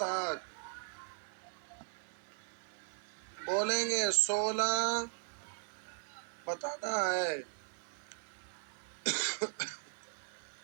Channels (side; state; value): left; silent; digital silence